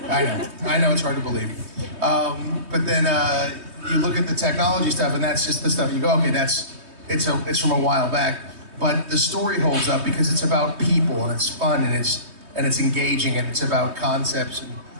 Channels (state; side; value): late; left; 3.2 ms